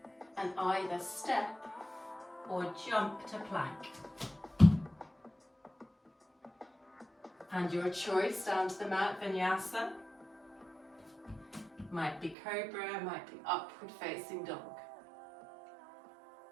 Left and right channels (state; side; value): drops out; left; at 12.4 s